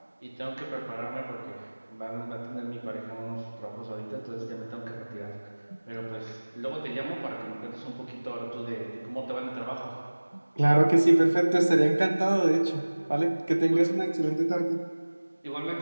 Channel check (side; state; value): both; inverted; correlation -1.00